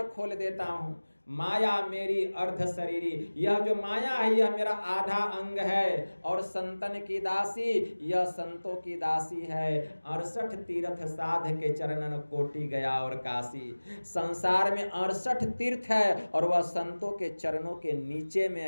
खोल देता हूं। माया मेरी अर्ध शरीरी, यह जो माया है यह मेरा आधा अंग है। और संतन की दासी, यह संतों की दासी है। 68 तीर्थ साध के चरणन कोटि गया और काशी। संसार में 68 तीर्थ है और वह संतों के चरणों के नीचे में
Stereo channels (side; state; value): both; inverted; correlation -1.00